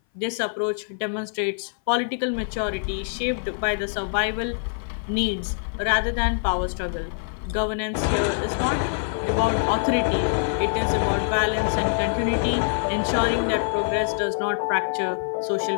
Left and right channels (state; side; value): silent; right; 59 dB below the other